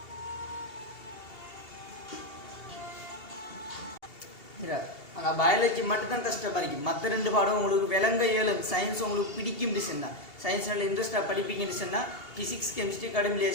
ஆனால் பயாலஜி மட்டும்தான் கஷ்டமாக இருக்குது. மற்ற 2 பாடம் உங்களுக்கு விளங்க இயலும். சயின்ஸ் உங்களுக்கு பிடிக்கும்னு சொன்னால், சயின்ஸ் நல்ல இன்ட்ரெஸ்டாக படிப்பீங்கன்னு சொன்னால் ஃபிசிக்ஸ், கெமிஸ்ட்ரி கடும்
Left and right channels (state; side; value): late; right; 2.7 ms